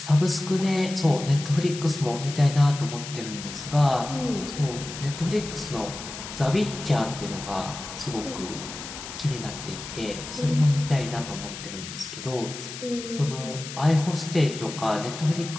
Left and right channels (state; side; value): noise; left; hiss, 10 dB below the sound